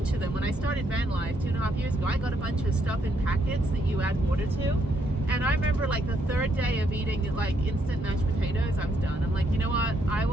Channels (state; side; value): normal; both; correlation 0.74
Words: of them when I started Vanlife 2.5 years ago. I got a bunch of stuff in packets that you add water to. And I remember like the third day of eating like instant mashed potatoes, I was done. I'm like, you know what? I